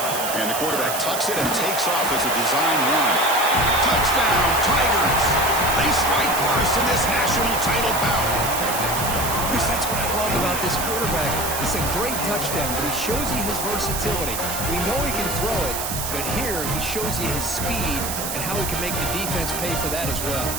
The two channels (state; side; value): noise; right; hiss, 4 dB below the sound